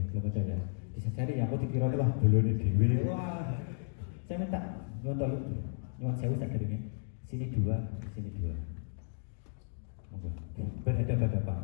belum ada ya. Bisa cari ya. Aku dikira wah belum dewi. Wah, saya minta nyuwun sewu sakit sini 2, sini 2. Monggo.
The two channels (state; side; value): silent; right; digital silence